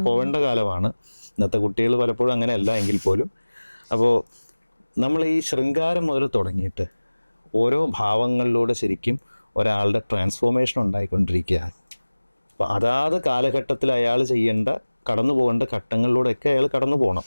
പോവേണ്ട കാലമാണ്. ഇന്നത്തെ കുട്ടികൾ പലപ്പോഴും അങ്ങനെയല്ല എങ്കിൽ പോലും. അപ്പോൾ നമ്മൾ ഈ ശൃംഗാരം മുതൽ തുടങ്ങിയിട്ട് ഓരോ ഭാവങ്ങളിലൂടെ ശരിക്കും ഒരാളുടെ ട്രാൻസ്ഫോർമേഷൻ ഉണ്ടായിക്കൊണ്ടിരിക്കുകയാണ്. അപ്പോൾ അതാത് കാലഘട്ടത്തിൽ അയാൾ ചെയ്യേണ്ട, കടന്നു പോകേണ്ട ഘട്ടങ്ങളിലൂടെയൊക്കെ അയാൾ കടന്നു പോകണം.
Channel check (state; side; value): inverted; both; correlation -1.00